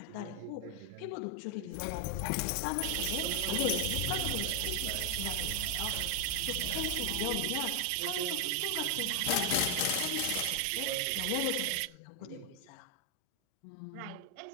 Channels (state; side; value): different; both; correlation 0.00